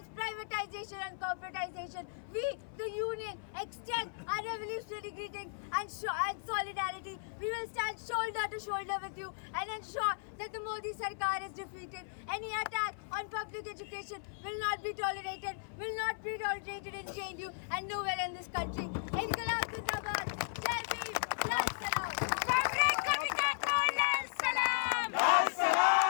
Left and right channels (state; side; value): silent; right; 54 dB below the other